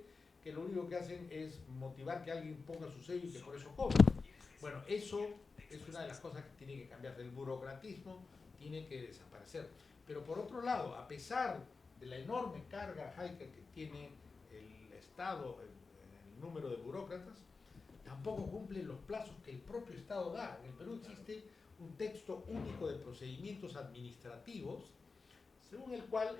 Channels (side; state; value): right; quieter; 4.3 dB